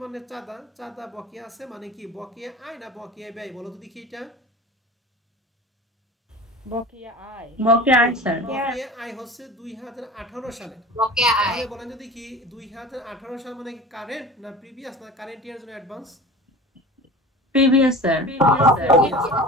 মানে চাঁদা। চাঁদা বকেয়া আছে মানে কি? বকেয়া আয় না বকেয়া ব্যয় বলো তো দেখি? এটা বকেয়া আয়। বকেয়া আয় স্যার। বকেয়া আয় হচ্ছে 2018 সালে। বকেয়া আয়। তাহলে বলেন যদি কি 2018 সাল মানে কি কারেন্ট না প্রিভিয়াস না কারেন্ট ইয়ার জন্য অ্যাডভান্স? Previous sir.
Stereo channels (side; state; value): both; normal; correlation 0.36